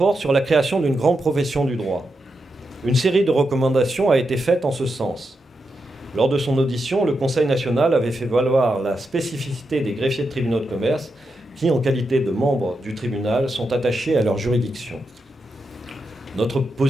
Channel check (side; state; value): both; normal; correlation 0.86